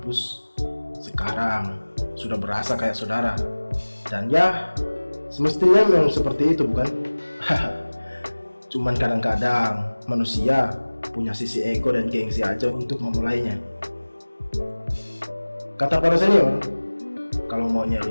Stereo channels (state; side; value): inverted; both; correlation -1.00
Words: sekarang sudah berasa kayak saudara. Dan ya, semestinya memang seperti itu, bukan? Cuman kadang-kadang manusia punya sisi ego dan gengsi aja untuk memulainya. Kata para senior, kalau mau